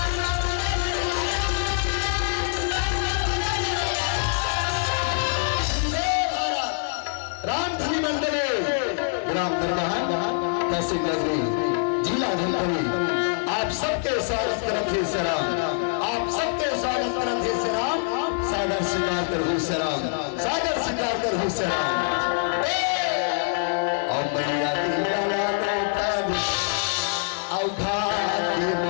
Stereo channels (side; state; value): right; silent; 62 dB below the other